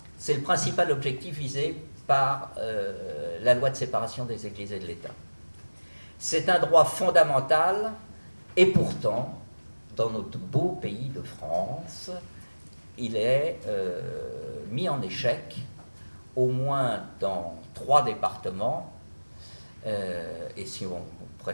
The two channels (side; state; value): both; inverted; correlation -1.00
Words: c'est le principal objectif visé par la loi de séparation des Églises et de l'État. C'est un droit fondamental, et pourtant, dans notre beau pays de France, il est mis en échec, au moins dans 3 départements, et si on